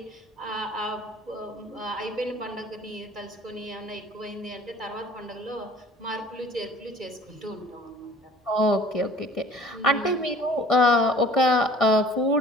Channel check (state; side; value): normal; both; correlation 0.49